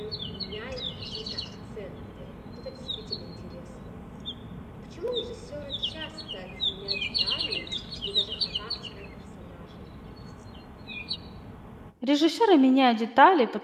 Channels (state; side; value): identical; both; correlation 1.00